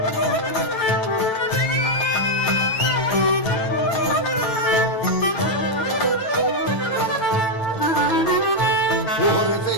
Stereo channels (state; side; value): late; right; 9.0 ms